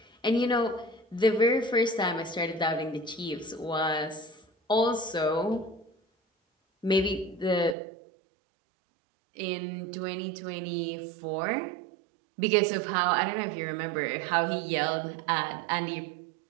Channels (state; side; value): drops out; left; at 7.8 s